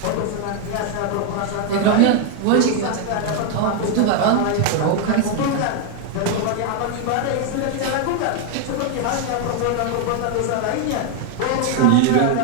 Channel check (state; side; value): different; both; correlation 0.01